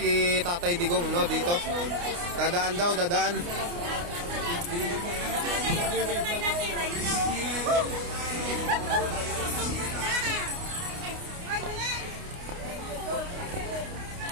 Tatay Digong, no, dito. Dadaan daw, dadaan.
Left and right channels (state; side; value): late; left; 29 ms